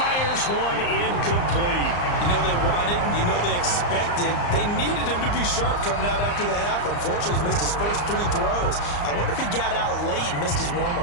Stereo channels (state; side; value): late; right; 34 ms